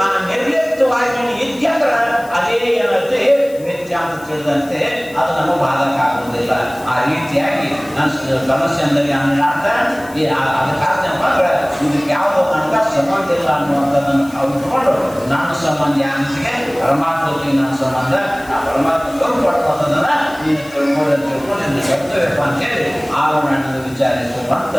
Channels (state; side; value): noise; left; hiss, 22 dB below the sound